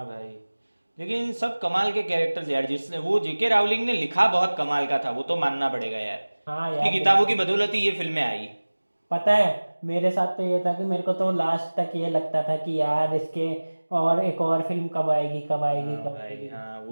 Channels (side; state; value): both; inverted; correlation -1.00